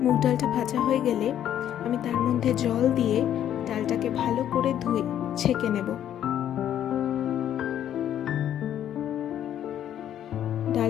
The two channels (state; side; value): quieter; right; 10.6 dB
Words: মুগ ডালটা ভাজা হয়ে গেলে আমি তার মধ্যে জল দিয়ে ডালটাকে ভালো করে ধুয়ে ছেঁকে নেব।